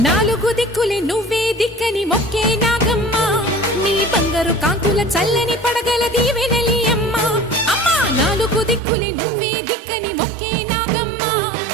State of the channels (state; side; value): drops out; left; at 8.8 s